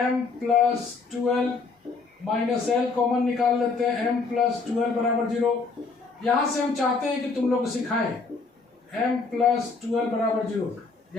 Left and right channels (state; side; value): quieter; right; 4.3 dB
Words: plus 2l minus l common निकाल लेते हैं, m प्लस 2l बराबर 0। यहाँ से हम चाहते हैं कि तुम लोग सिखाएं m प्लस 2l बराबर 0।